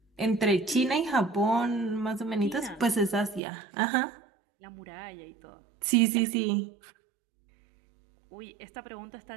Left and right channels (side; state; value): left; drops out; at 3.4 s